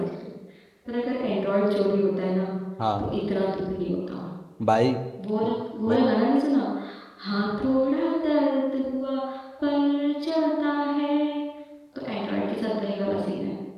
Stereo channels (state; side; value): identical; both; correlation 1.00